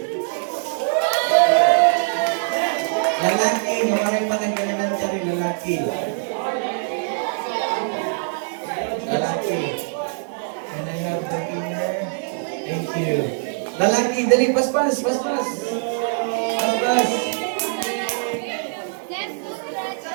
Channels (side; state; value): left; silent; digital silence